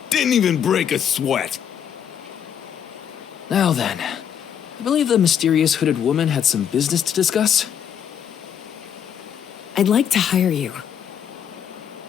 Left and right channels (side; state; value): right; quieter; 8.6 dB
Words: Didn't even break a sweat. Now then, I believe the mysterious hooded woman had some business to discuss. I'd like to hire you.